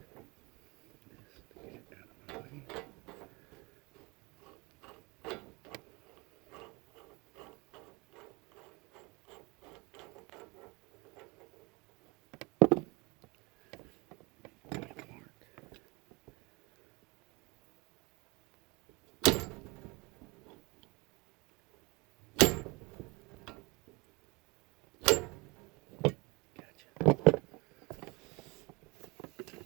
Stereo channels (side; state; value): left; quieter; 26.7 dB